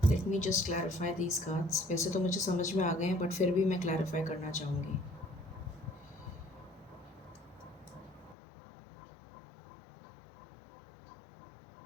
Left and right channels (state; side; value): drops out; right; at 8.3 s